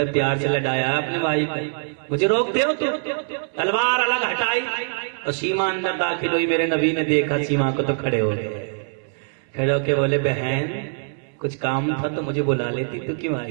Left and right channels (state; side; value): silent; left; 63 dB below the other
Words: پیار سے لڑایا ہے اپنے بھائی کو، مجھے روکتے ہو تو؟ تلوار الگ ہٹائی اور سیما اندر داخل ہوئی۔ میرے نبی نے دیکھا سیما کو تو کھڑے ہو گئے، کھڑے ہو کے بولے بہن کچھ کام تھا تو مجھے بلا لیتی، تو کیوں